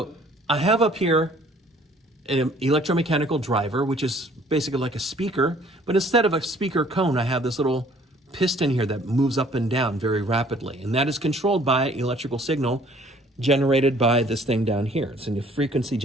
I have up here an electromechanical driver, which is basically like a speaker, but instead of a speaker cone, I have this little piston here that moves up and down very rapidly, and that is controlled by an electrical signal generated by this thing down here. It's a frequency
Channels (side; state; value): both; normal; correlation 0.57